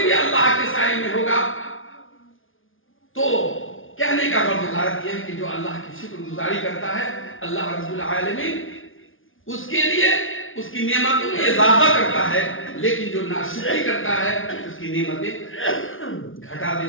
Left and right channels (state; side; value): late; right; 0.58 ms